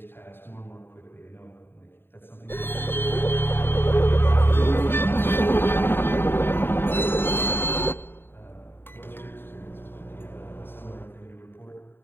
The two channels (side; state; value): right; late; 0.10 ms